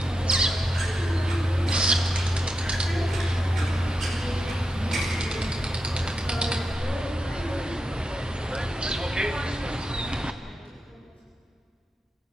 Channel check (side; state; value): both; normal; correlation 0.87